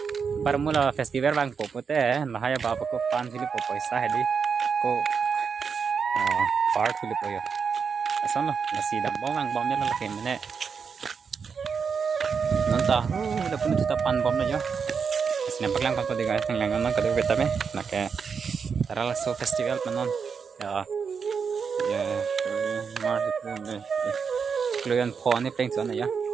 Parmula festival bang popote lahaya baba ko pan sili po paisa hedi ko part sili po yo. Asan lo ngasi dambong ang bom nila lakin mene. Nonta, udah pun kita pan bom na yo. Nampak lang ko di guys, ng lang nang kadu betabe. Nake taral so festival panon. Ya. Ya, mar de. Kluyan po ni peng so na ya.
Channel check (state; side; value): quieter; left; 6.0 dB